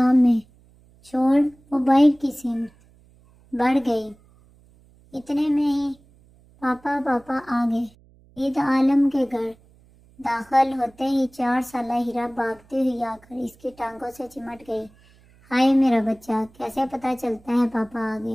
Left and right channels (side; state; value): right; noise; hum, 29 dB below the sound